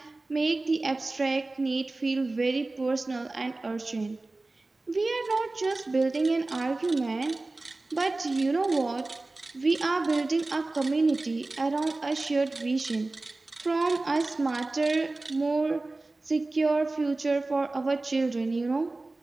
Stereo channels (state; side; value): quieter; left; 3.1 dB